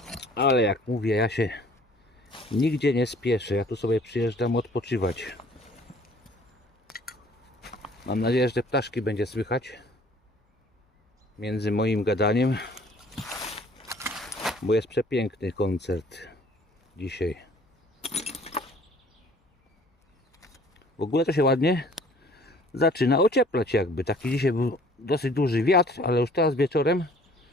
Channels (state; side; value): normal; both; correlation 0.54